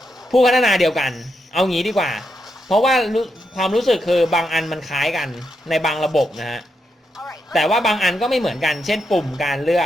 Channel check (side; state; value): both; normal; correlation 0.83